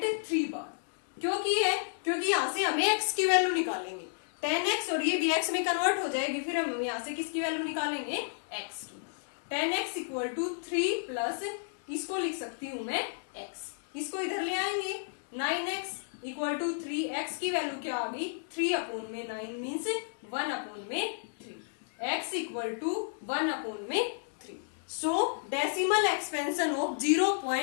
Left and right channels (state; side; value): silent; right; digital silence